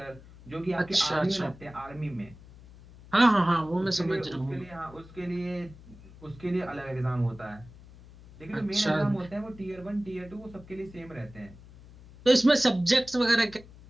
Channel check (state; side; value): noise; left; hum, 20 dB below the sound